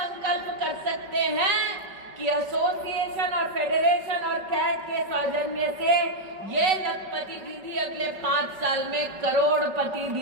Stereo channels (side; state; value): left; late; 5.3 ms